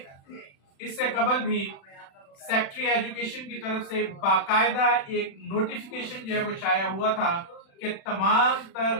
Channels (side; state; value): right; late; 36 ms